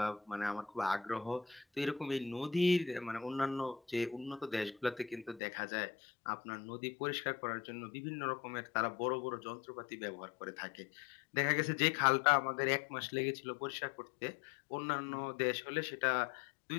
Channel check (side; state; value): right; drops out; at 5.4 s